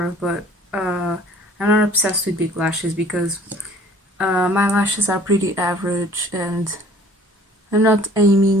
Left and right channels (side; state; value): both; normal; correlation 0.52